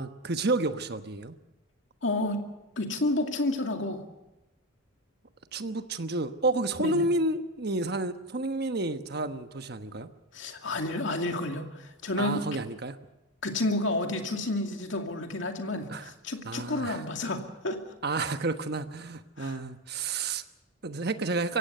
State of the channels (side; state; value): both; normal; correlation 0.15